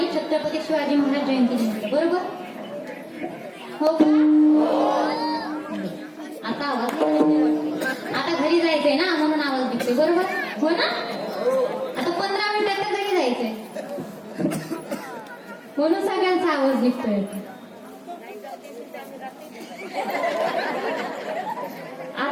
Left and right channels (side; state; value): both; identical; correlation 1.00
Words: छत्रपती शिवाजी महाराज जयंती निमित्त, बरोबर? हो का? आता आवाज आता घरी जायचंय ना, म्हणून आवाज निघतोय, बरोबर? हो ना? आता 15 मिनिटात तर घरी जायचंय, म्हणून सगळ्यांचा आवाज निघतोय.